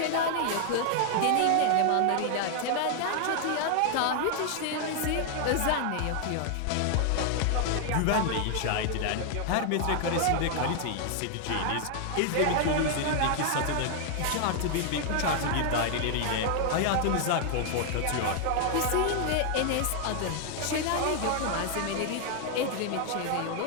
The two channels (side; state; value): both; different; correlation 0.00